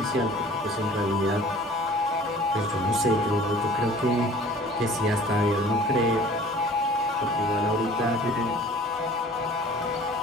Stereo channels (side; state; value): both; normal; correlation 0.48